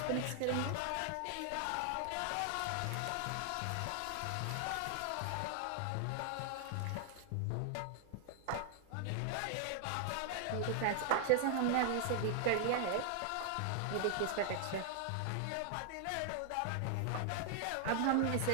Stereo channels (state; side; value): different; both; correlation 0.00